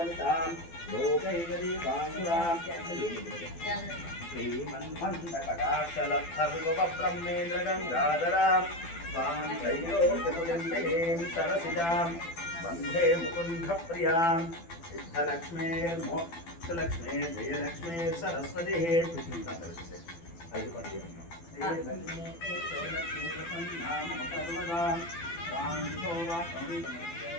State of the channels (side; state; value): right; late; 12 ms